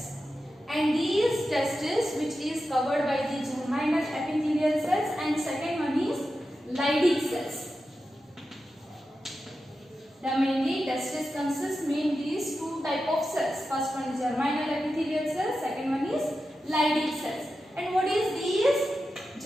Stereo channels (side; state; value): both; normal; correlation 0.91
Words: And these testes which is covered by the germinal epithelial cells, and second one is Leydig cells. The mainly testes consists mainly these two type of cells. First one is germinal epithelial cells, second one is Leydig cells. And what is these?